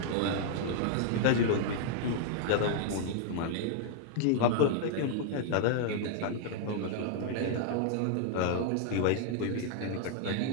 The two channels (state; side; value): different; both; correlation 0.00